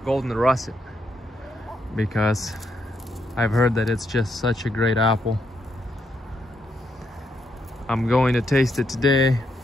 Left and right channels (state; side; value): normal; both; correlation 0.78